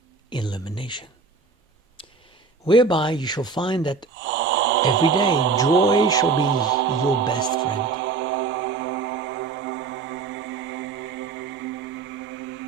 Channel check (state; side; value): quieter; left; 4.6 dB